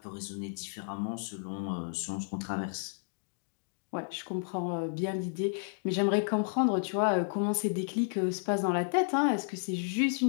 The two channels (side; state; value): right; silent; digital silence